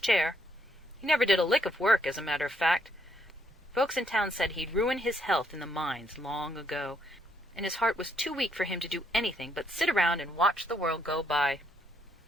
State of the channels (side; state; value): both; normal; correlation 0.73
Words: He never did a lick of work, as a matter of fact. Folks in town said he'd ruined his health in the mines long ago, and his heart was too weak for him to do anything but sit around and watch the world go by.